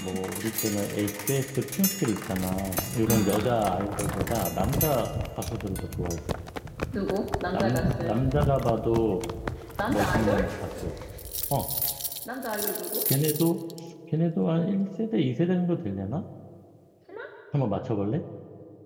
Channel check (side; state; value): both; identical; correlation 1.00